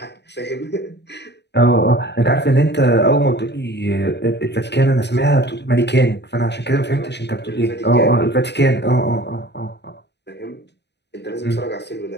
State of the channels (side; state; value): right; late; 0.50 ms